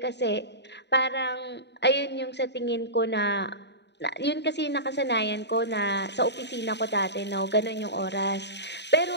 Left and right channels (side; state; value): right; late; 0.50 ms